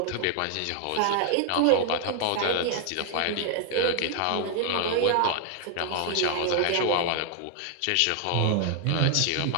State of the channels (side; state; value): both; different; correlation 0.00